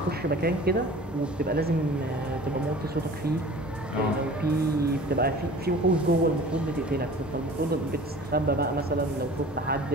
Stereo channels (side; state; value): both; normal; correlation 0.43